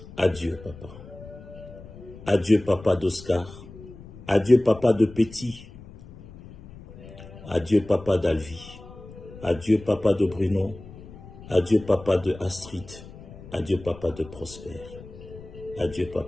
Adieu, papa. Adieu, papa d'Oscar. Adieu, papa de Petit. Adieu, papa d'Alvi. Adieu, papa de Bruno. Adieu, papa de Astrid. Adieu, papa de Prosper. Adieu,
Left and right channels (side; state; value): left; noise; rumble, 17 dB below the sound